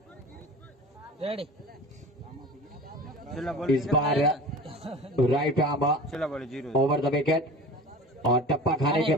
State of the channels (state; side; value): normal; both; correlation 0.38